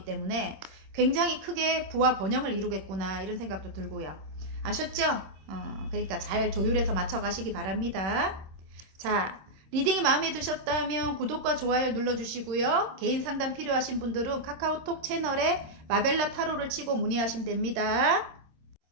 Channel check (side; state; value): left; late; 26 ms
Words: 때문에 굉장히 크게 부와 번영을 이루겠구나 이런 생각도 들고요. 아셨죠? 그러니까 잘 조율해서 맞춰가시기 바랍니다. 자, 리딩이 마음에 드셨다면 구독과 좋아요 눌러주시고요. 개인 상담 필요하신 분들은 카카오톡 채널에 마벨라 타로를 치고 문의하시면 됩니다.